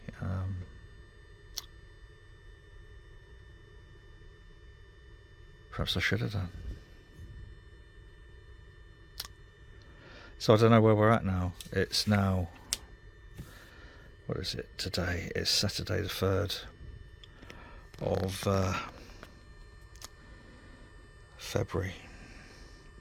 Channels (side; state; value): both; identical; correlation 1.00